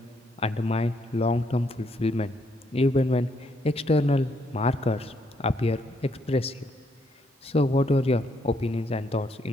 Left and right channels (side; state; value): both; normal; correlation 0.73